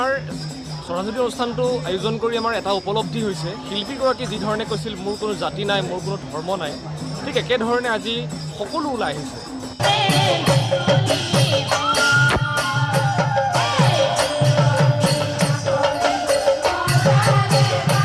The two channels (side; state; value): both; identical; correlation 1.00